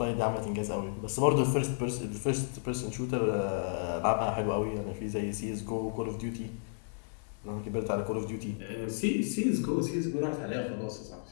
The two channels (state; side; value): silent; right; 56 dB below the other